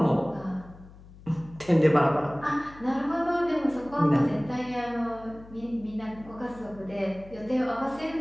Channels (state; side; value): noise; left; hum, 20 dB below the sound